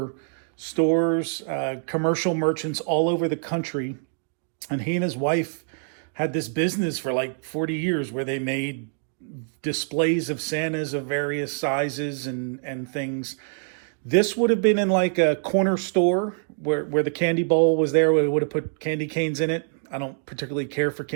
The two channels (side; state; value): left; silent; digital silence